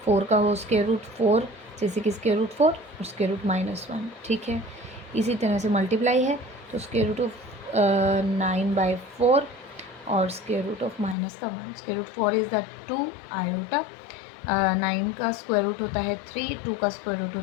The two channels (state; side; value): drops out; right; at 11.2 s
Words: 4 का हो स्क्वायर रूट 4, जैसे कि स्क्वायर रूट 4 और स्क्वायर रूट -1। ठीक है, इसी तरह से मल्टीप्लाई है, तो स्क्वायर रूट ऑफ 9/4, और square root of -1। Square root 4 is the 2 iota, 9 का स्क्वायर रूट होता है 3, 2 का स्क्वायर रूट